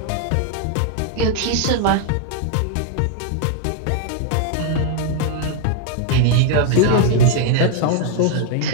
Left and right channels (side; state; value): both; different; correlation 0.00